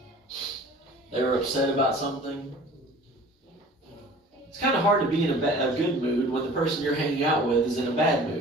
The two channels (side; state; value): both; normal; correlation 0.46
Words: They were upset about something? It's kind of hard to be in a good mood when the person you're hanging out with is in a bad